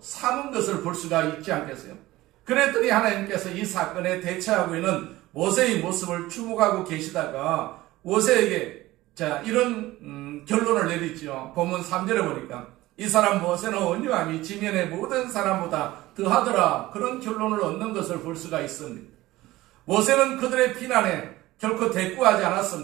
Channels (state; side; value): quieter; left; 17.6 dB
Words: 삼은 것을 볼 수가 있지 않겠어요? 그랬더니 하나님께서 이 사건에 대처하고 있는 모세의 모습을 주목하고 계시다가 모세에게 이런 결론을 내리죠. 본문 3절에 보니까 이 사람 모세는 온유함이 지면의 모든 사람보다 더하더라, 그런 결론을 얻는 것을 볼 수가 있습니다. 모세는 그들의 비난에 결코 대꾸하지